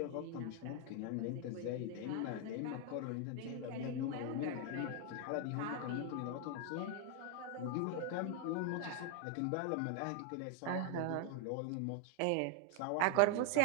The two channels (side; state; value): both; different; correlation 0.00